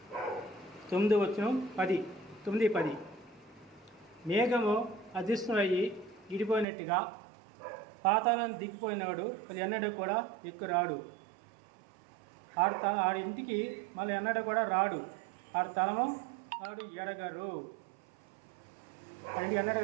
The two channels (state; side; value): drops out; left; at 6.7 s